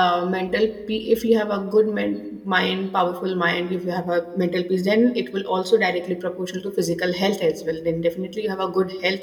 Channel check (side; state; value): both; identical; correlation 1.00